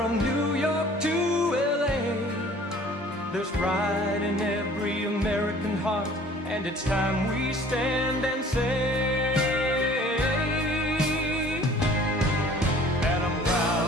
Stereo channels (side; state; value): both; normal; correlation 0.51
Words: New York to LA, there's pride in every American heart, and it's time we stand and say, and I'm